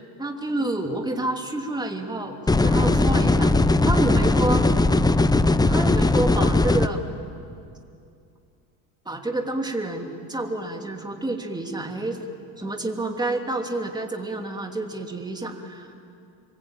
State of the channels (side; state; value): both; normal; correlation 0.78